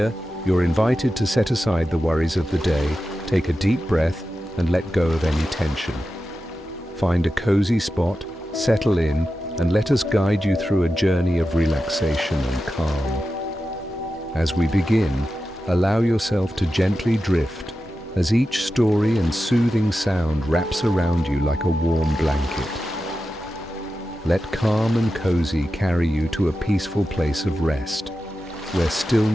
you're invited to set aside the worries of the day, take a deep breath, and let go of any tension. Find a cozy spot, settle in, and let us guide you through a journey of relaxation and calm. As we begin, allow yourself to gently drift as each story and soothing sound wraps around you like a warm blanket. Let calm and cozy carry you to a peaceful place of rest, where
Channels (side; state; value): both; normal; correlation 0.92